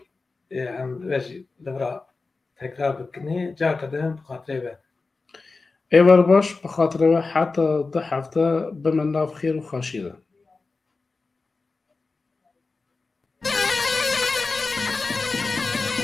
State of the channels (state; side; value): quieter; right; 3.9 dB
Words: em ve jî li vir tekrar bikinî carkedimin bi xatirê ve ئێوەر باش بەخاترەوە حتا دە هەفتە بمە ناو خێر و خاشیدا